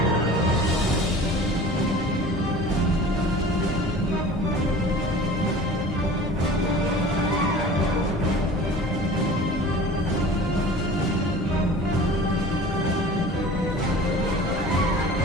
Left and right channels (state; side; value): normal; both; correlation 0.41